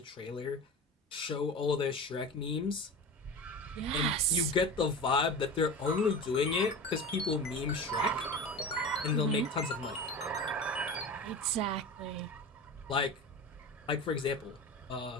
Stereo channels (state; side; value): normal; both; correlation 0.30